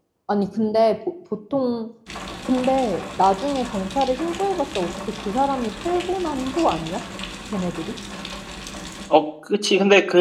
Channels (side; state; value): both; identical; correlation 1.00